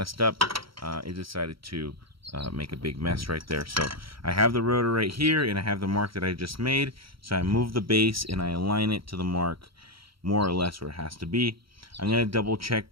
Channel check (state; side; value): late; left; 0.75 ms